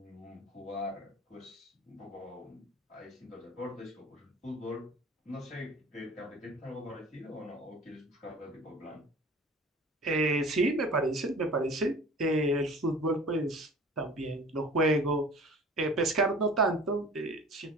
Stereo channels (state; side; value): normal; both; correlation 0.43